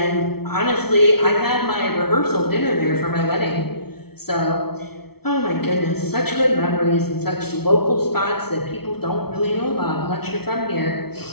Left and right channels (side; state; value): right; late; 0.96 ms